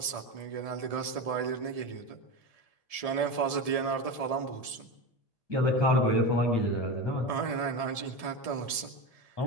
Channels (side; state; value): left; late; 1.7 ms